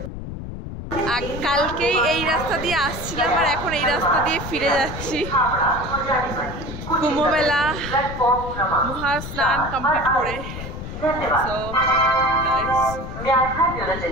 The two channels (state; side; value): noise; left; rumble, 9 dB below the sound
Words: কালকেই এই রাস্তা দিয়ে আসছিলাম, আর এখন এই রাস্তা দিয়ে ফিরে যাচ্ছি। কুম্ভ মেলা মহা স্নান কমপ্লিট করে, সো